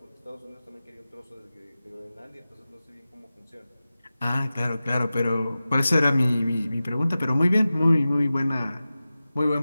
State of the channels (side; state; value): both; inverted; correlation -0.95